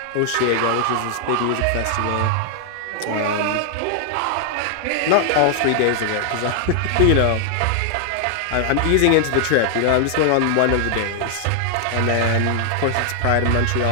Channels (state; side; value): different; both; correlation 0.00